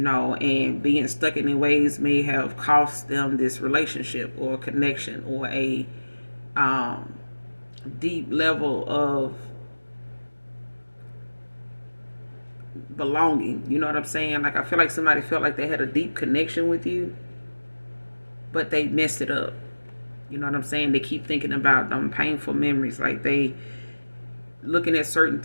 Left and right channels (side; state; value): both; inverted; correlation -1.00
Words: being stuck in their ways may have cost them this relationship or connection or a deep level of belonging. You know what I'm saying? Like, I feel like somebody felt like they had a deep connection with you, but they messed it up. You know what I'm saying? They keep thinking about them painful memories. Like, they looking at certain